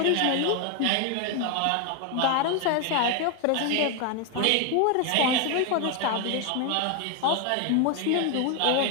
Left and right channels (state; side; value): different; both; correlation 0.01